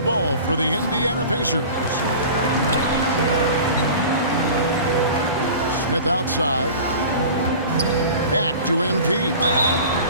ball for the Indiana Pacers. Smith outside. Back to MP.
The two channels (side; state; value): both; inverted; correlation -0.39